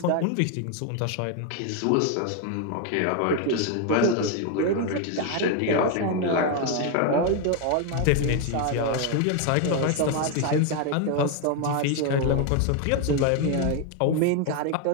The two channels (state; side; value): different; both; correlation 0.01